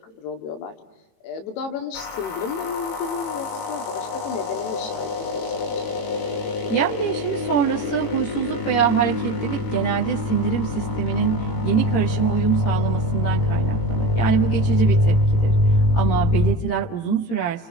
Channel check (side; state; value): right; late; 18 ms